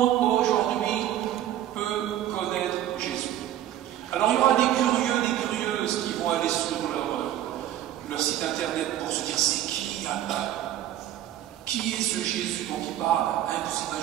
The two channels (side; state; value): left; quieter; 12.3 dB